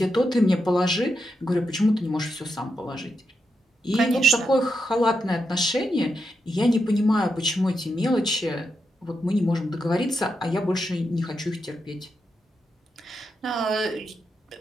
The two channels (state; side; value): normal; both; correlation 0.85